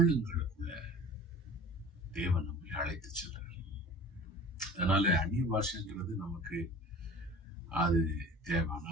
தேவன் நம்மை அழைத்து செல்றார். அதனால அந்நிய பாஷைங்கிறது நமக்கு அது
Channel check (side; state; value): both; normal; correlation 0.42